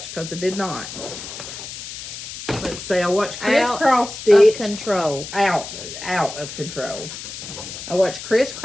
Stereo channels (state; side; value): noise; left; hiss, 10 dB below the sound